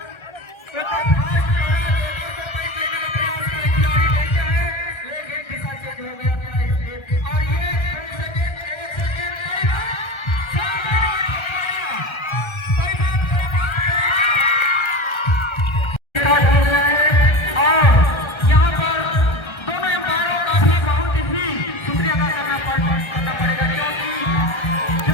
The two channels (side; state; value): right; late; 1.3 ms